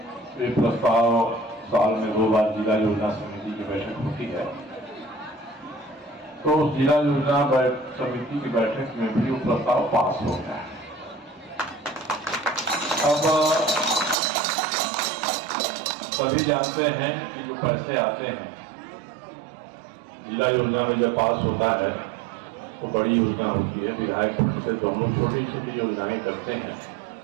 ये प्रस्ताव साल में 2 बार जिला योजना समिति की बैठक होती है, तो उस जिला योजना समिति की बैठक में भी वो प्रस्ताव पास हो गया है। अब सभी जानते हैं कि जो पैसे आते हैं जिला योजना में जब पास होता है तो बड़ी योजना होती है, विधायक से तो हम लोग छोटी छोटी योजनाएं करते हैं।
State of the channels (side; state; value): left; drops out; at 14.2 s